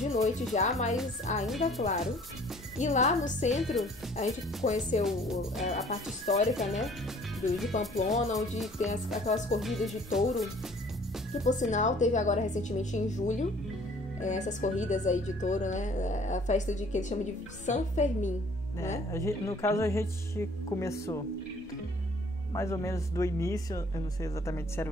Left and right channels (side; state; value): both; normal; correlation 0.55